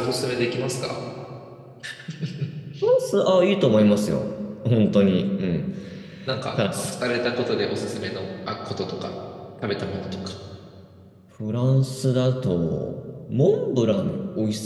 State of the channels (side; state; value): both; identical; correlation 1.00